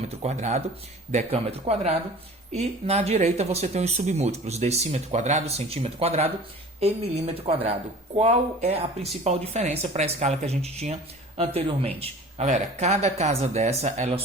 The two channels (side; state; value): both; normal; correlation 0.43